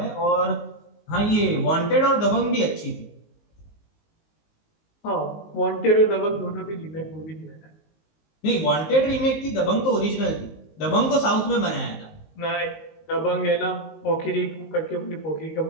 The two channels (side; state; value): right; late; 19 ms